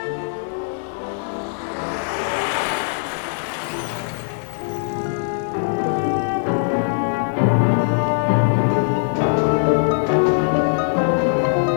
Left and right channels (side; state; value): right; silent; digital silence